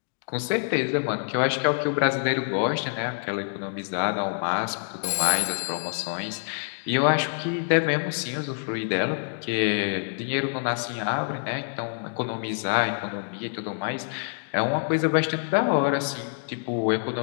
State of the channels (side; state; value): right; silent; digital silence